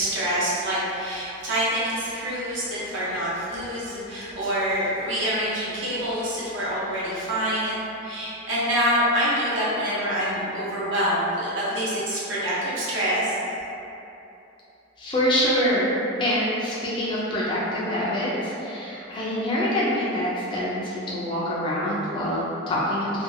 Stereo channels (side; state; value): both; normal; correlation 0.09